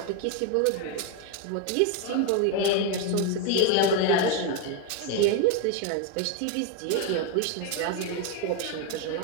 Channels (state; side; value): different; both; correlation 0.01